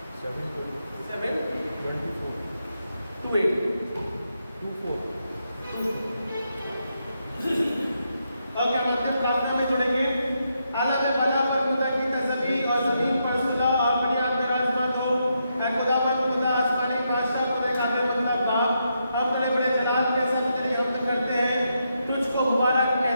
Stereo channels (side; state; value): both; inverted; correlation -0.81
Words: 7 ओके, हम अंतिम प्रार्थना में जुड़ेंगे। आला में भला पर खुदा की तस्वीर और जमीन पर सुलह और बुनियाद में राजमा जो है खुदावंद खुदा आसमानी बादशाह खुदा कादिर मतलब बाप, हम बड़े बड़े जलाल के साथ तेरी हमद करते हैं, तुझको मुबारक